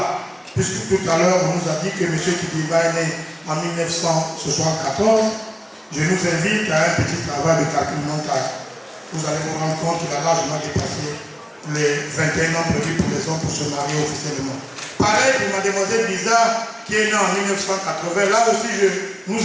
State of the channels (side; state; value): both; identical; correlation 1.00